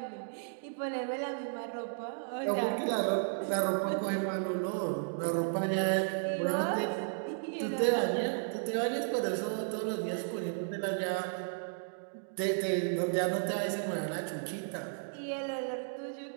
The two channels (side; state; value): left; silent; digital silence